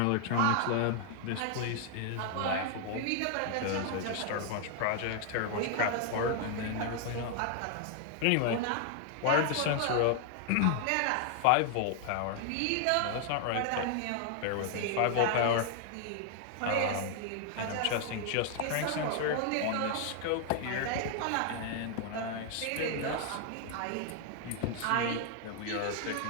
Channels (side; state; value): both; different; correlation 0.00